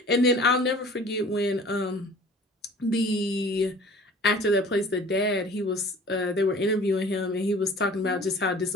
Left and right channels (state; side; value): normal; both; correlation 0.46